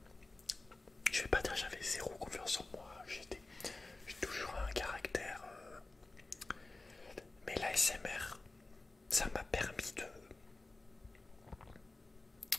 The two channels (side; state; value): right; quieter; 3.1 dB